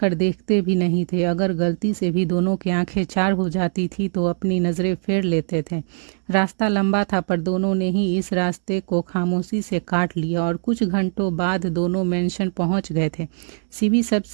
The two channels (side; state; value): left; silent; digital silence